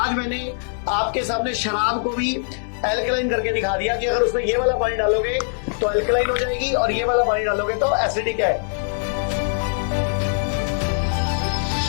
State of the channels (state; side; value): silent; right; 64 dB below the other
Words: मैंने आपके सामने शराब को भी एल्कलाइन करके दिखा दिया कि अगर उसमें ये वाला पानी डालोगे तो एल्कलाइन हो जाएगी और ये वाला पानी डालोगे तो एसिडिक है।